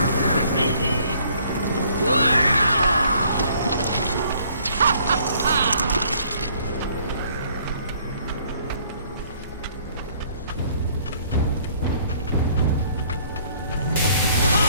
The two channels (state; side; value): inverted; both; correlation -0.61